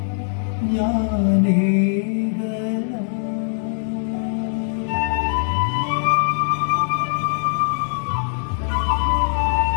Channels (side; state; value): right; silent; 65 dB below the other